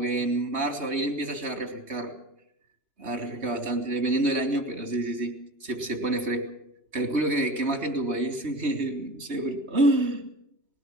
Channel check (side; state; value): left; late; 3.2 ms